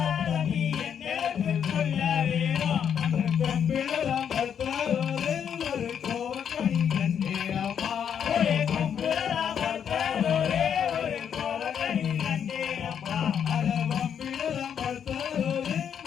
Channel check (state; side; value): quieter; right; 8.2 dB